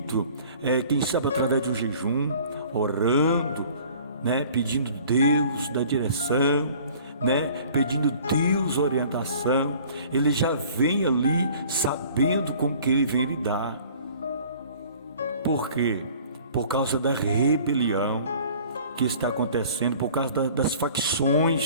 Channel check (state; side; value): inverted; both; correlation -0.50